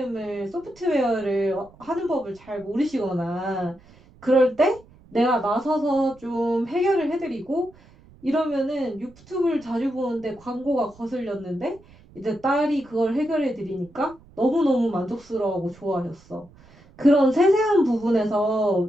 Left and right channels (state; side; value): noise; right; rumble, 25 dB below the sound